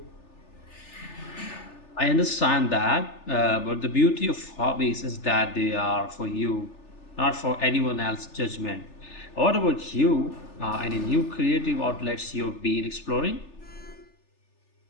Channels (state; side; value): late; right; 3.4 ms